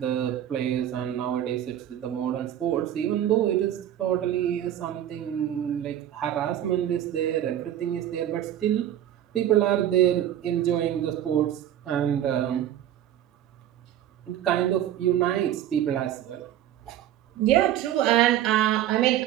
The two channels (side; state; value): left; quieter; 11.5 dB